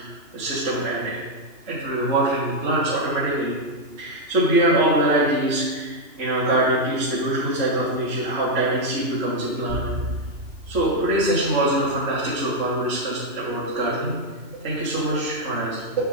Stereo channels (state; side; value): late; left; 2.9 ms